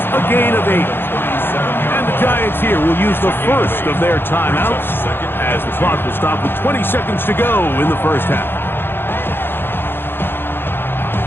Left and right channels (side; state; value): right; late; 0.10 ms